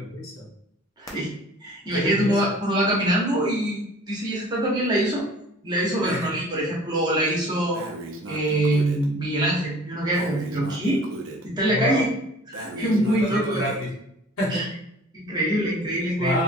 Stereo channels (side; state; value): both; normal; correlation 0.48